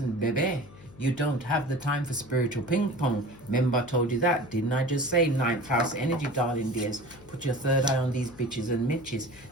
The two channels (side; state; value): left; noise; hum, 21 dB below the sound